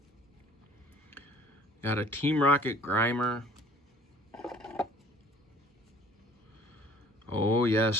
Got a Team Rocket Grimer. Oh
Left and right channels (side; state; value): both; normal; correlation 0.53